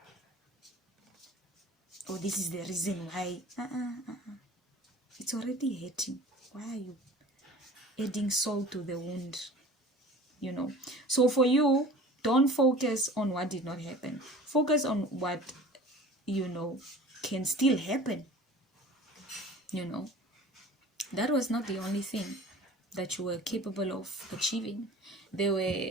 or this is the reason why. It's already hurting. Why are you adding salt to the wound? So for you, don't focus on what did not happen. Focus on what can still happen. That was not the only thing that you were capable of achieving. There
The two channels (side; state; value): both; normal; correlation 0.42